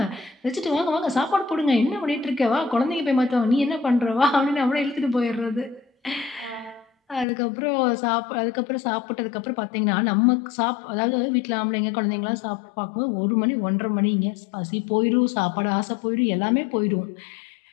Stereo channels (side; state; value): right; drops out; at 7.2 s